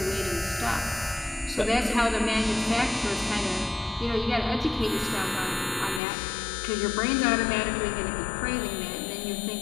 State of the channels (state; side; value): drops out; right; at 6.0 s